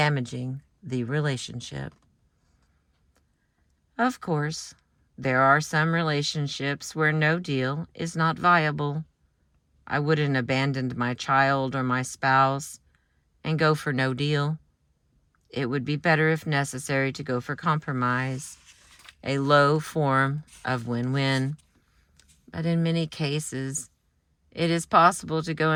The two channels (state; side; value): identical; both; correlation 1.00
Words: the relationship. Of course, there are some relationships where no deal is not viable. I wouldn't abandon my child or my spouse and go for no deal. It would be better, if necessary, to go for compromise, a low form of win-win. But in many cases, it is possible to go